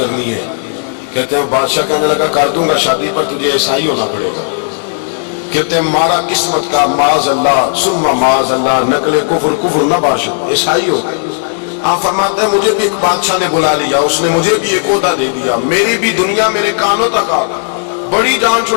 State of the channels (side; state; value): right; silent; digital silence